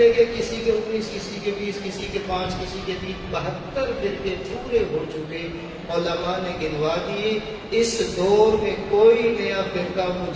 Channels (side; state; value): both; identical; correlation 1.00